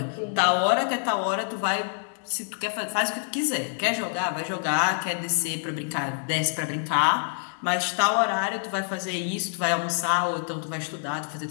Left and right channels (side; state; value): right; silent; digital silence